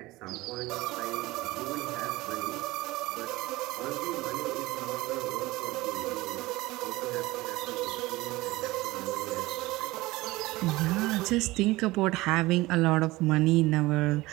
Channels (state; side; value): quieter; left; 19.6 dB